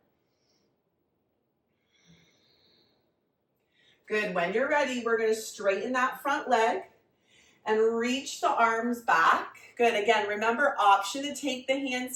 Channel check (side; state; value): both; identical; correlation 1.00